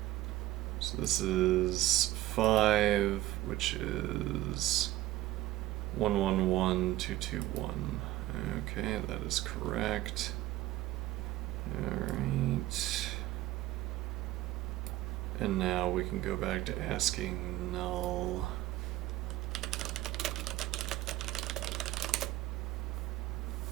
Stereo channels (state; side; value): quieter; left; 15.7 dB